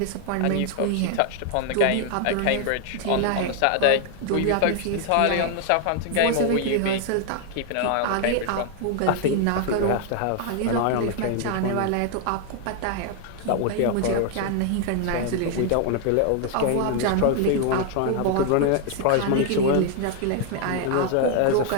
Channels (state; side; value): different; both; correlation 0.00